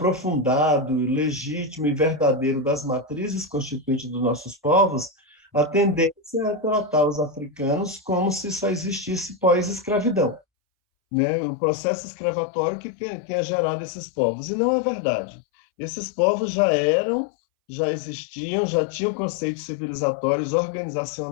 legítimo e verdadeiro das matrizes constituintes dos nossos povos, a tendência é tratar os africanos como se só existisse pós-escravidão, né? O processo escravatório que tenha gerado esses povos. E não é verdade. Esses povos já existiam, já tinham conceitos civilizatórios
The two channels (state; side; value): drops out; right; at 10.4 s